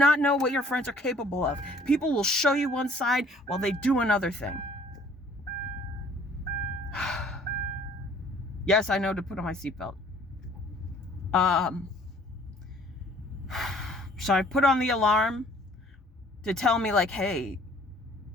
know what your friends are capable of. People will show you one side while they do another thing. Yes, I know to put on my seatbelt. So I put on the alarm to tell me, like, hey,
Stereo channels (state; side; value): normal; both; correlation 0.56